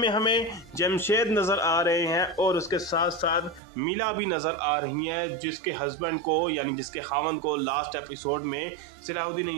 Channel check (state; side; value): drops out; left; at 3.6 s